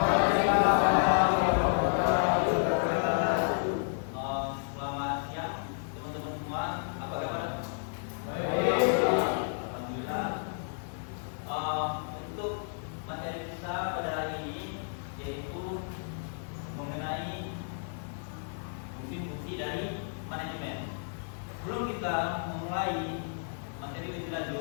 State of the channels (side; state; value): right; silent; digital silence